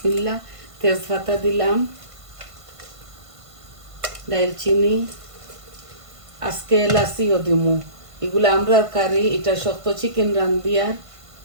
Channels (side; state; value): left; late; 1.5 ms